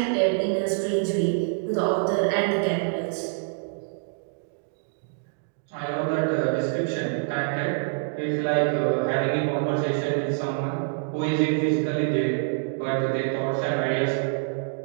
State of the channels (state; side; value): silent; left; digital silence